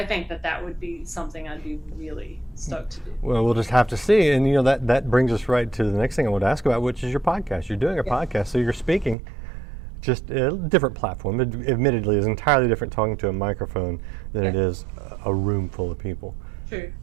think that would be something I'd be really stoked to do. Well, we'll just have to see. And that brings us right to the next thing I want to ask about, which is your podcast. You're doing a podcast, so you're speaking. Just a different platform. Admittedly, it's entirely different talking to a microphone than it is a room full of people. True.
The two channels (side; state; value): left; drops out; at 9.2 s